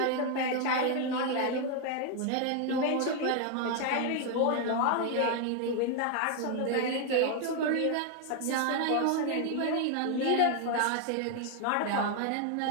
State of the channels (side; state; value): both; different; correlation 0.01